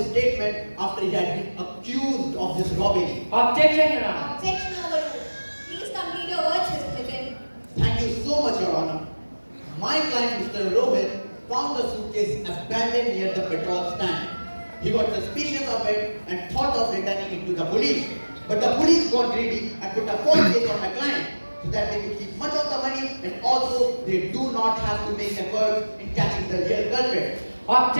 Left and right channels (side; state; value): both; inverted; correlation -1.00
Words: statement after he had been accused of this robbery. Objection, Your Honor. Objection overruled. Please complete your words, Mr. Nitin. Thank you so much, Your Honor. My client, Mr. Rohit, found the suitcase abandoned near the petrol stand. He got suspicious of it and thought of returning it to the police. But the police got greedy and put a false case on my client so that they could keep much of the money and also they do not have to make efforts in catching the real culprit.